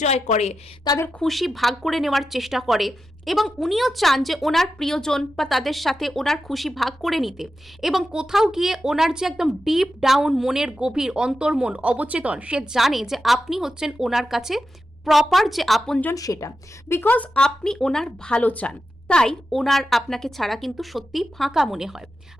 করে, তাদের খুশি ভাগ করে নেওয়ার চেষ্টা করে। এবং উনিও চান যে ওনার প্রিয়জন বা তাদের সাথে ওনার খুশি ভাগ করে নিতে। এবং কোথাও গিয়ে ওনার যে একদম ডিপ ডাউন মনের গভীর অন্তর্মন অবচেতন, সে জানে যে আপনি হচ্ছেন ওনার কাছে প্রপার যে আপনজন সেটা। বিকজ আপনি ওনার ভালো চান, তাই ওনার আপনাকে ছাড়া কিন্তু সত্যি ফাঁকা মনে হয়।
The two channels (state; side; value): normal; both; correlation 0.90